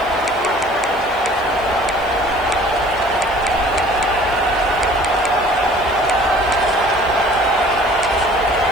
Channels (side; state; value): left; noise; hiss, 26 dB below the sound